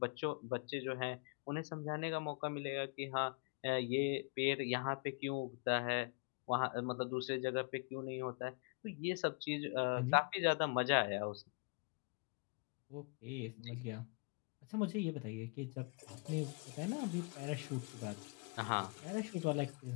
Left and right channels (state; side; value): quieter; right; 33.3 dB